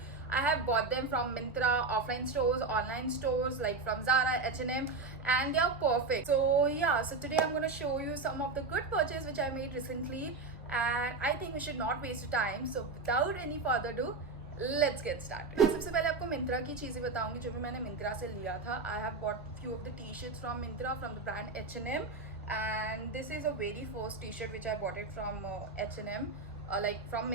I have bought them from Myntra, offline stores, online stores like from Zara, H&M, and they are perfect. So yeah, so today I'm gonna show you some of the good purchases which I made recently, and I think we should not waste time. So without any further ado, let's get started. मैं सबसे पहले आपको मिंत्रा की चीज़ें बताऊंगी जो भी मैंने मिंत्रा से लिया था. I have bought few of the t-shirts from Myntra from the brand H&M, and this is a very first t-shirt which I bought it from H&M, like from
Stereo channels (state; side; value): quieter; left; 3.8 dB